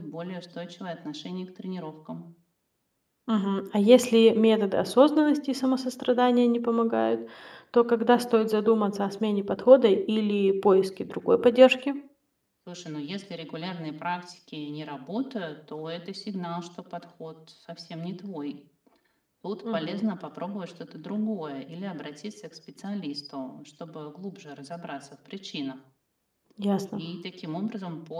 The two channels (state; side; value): identical; both; correlation 1.00